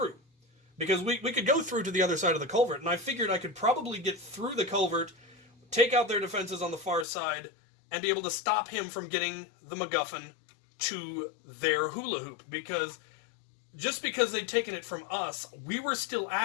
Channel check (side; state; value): right; drops out; at 7.1 s